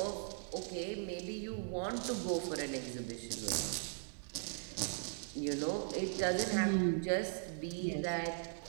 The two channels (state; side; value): silent; left; digital silence